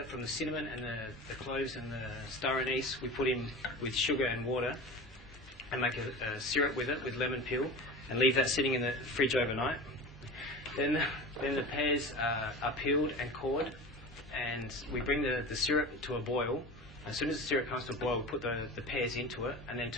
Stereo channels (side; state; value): both; normal; correlation 0.33